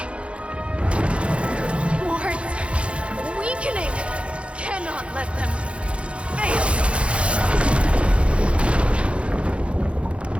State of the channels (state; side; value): late; left; 0.060 ms